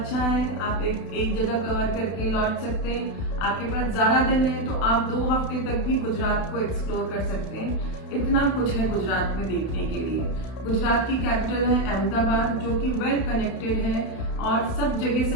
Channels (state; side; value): late; right; 32 ms